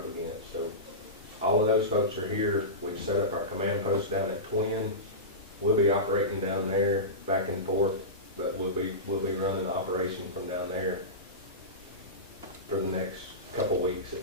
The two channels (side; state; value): both; normal; correlation -0.19